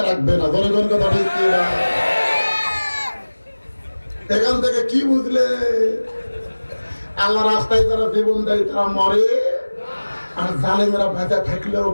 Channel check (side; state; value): both; inverted; correlation -1.00